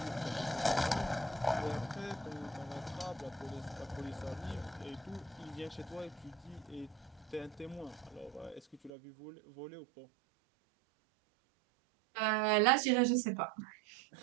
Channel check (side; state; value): left; drops out; at 8.9 s